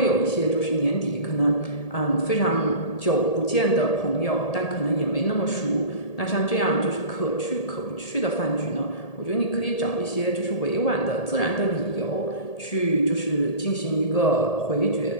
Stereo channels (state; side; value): late; right; 1.8 ms